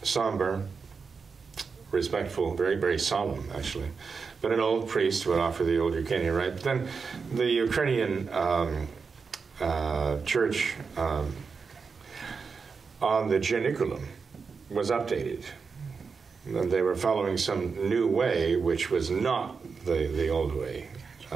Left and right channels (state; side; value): quieter; left; 5.2 dB